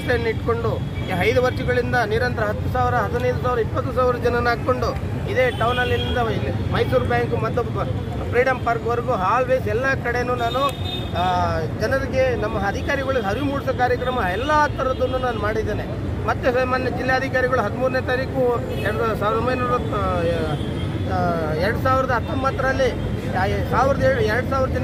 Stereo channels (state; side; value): identical; both; correlation 1.00